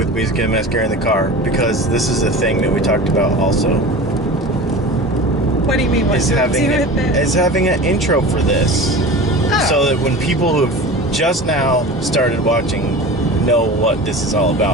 Music and Mascara in the car? Because this is a thing that we talked about also. What do you mean? What do we do with it? Is having an intro for this. Oh. So that when people who have just now started watching know what this is all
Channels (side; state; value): both; normal; correlation 0.34